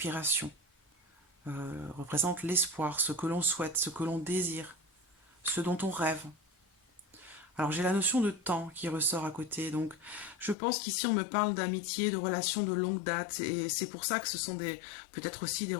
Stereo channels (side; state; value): right; drops out; at 10.6 s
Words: Représente l'espoir, ce que l'on souhaite, ce que l'on désire, ce dont on rêve. Alors j'ai la notion de temps qui ressort à côté, donc je pense qu'ici on me parle d'amitié, de relations de longue date, et c'est pour ça que ce sont peut-être aussi des